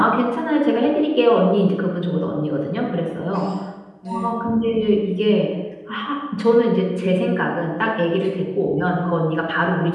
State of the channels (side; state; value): both; identical; correlation 1.00